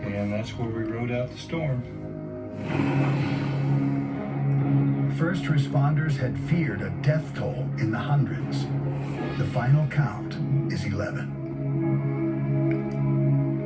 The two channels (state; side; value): identical; both; correlation 1.00